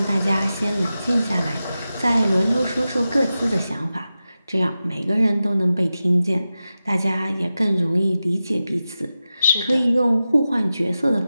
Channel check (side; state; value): both; inverted; correlation -0.93